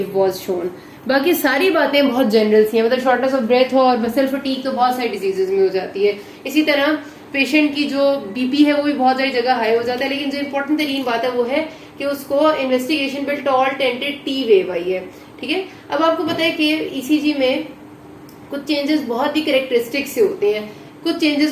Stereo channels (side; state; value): both; identical; correlation 1.00